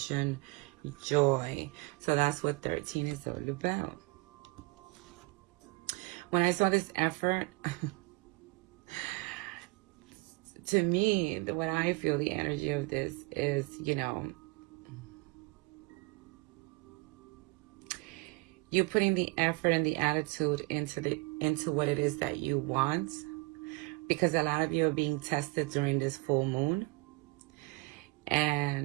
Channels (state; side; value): quieter; left; 24.3 dB